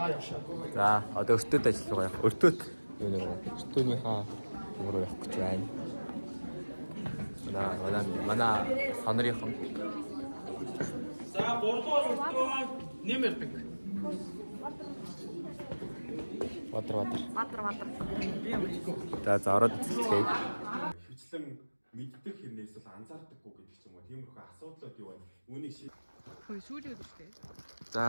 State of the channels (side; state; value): both; inverted; correlation -1.00